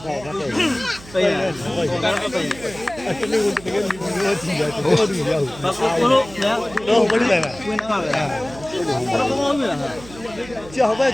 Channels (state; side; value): noise; right; hum, 18 dB below the sound